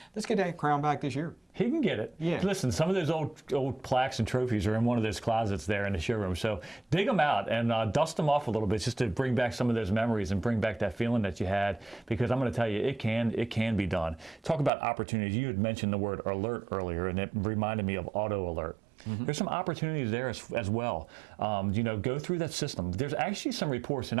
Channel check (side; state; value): left; drops out; at 14.7 s